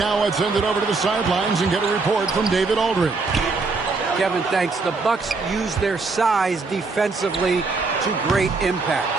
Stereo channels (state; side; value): quieter; left; 4.0 dB